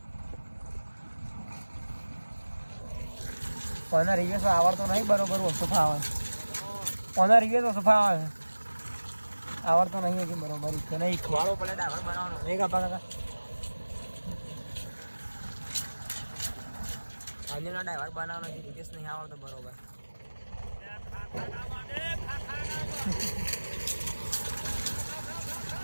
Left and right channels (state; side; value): inverted; both; correlation -1.00